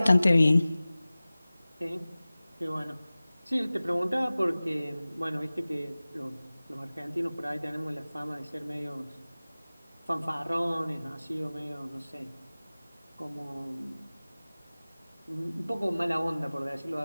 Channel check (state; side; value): inverted; both; correlation -0.98